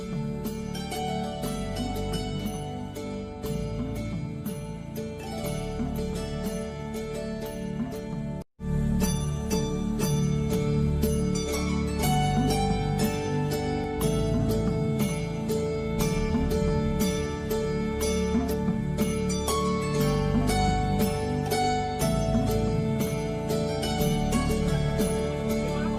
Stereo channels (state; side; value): identical; both; correlation 1.00